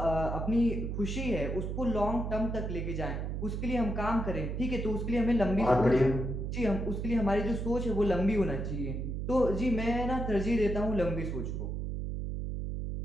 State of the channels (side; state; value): right; noise; hum, 3 dB below the sound